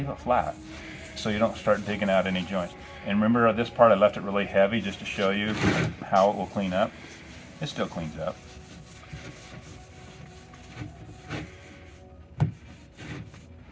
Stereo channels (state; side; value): identical; both; correlation 1.00